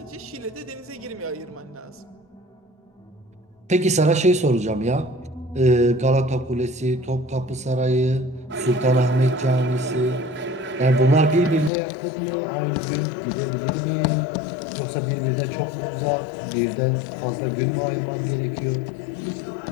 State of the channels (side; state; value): right; drops out; at 11.7 s